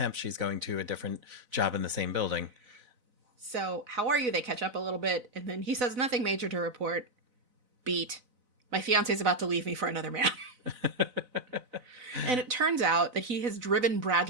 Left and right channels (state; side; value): late; left; 4.0 ms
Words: She's going to a different job in the same building. So, how are you? They catch up a little bit, and then he says, nothing major to report. Beat. My fiance's about to leave me for another man. And it turns out that he has driven